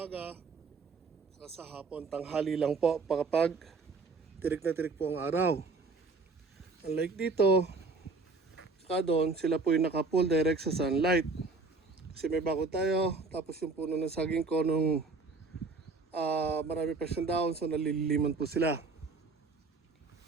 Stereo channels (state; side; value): quieter; left; 3.9 dB